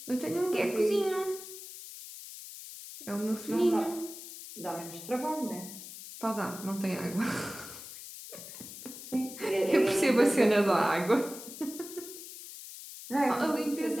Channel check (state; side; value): noise; left; hiss, 13 dB below the sound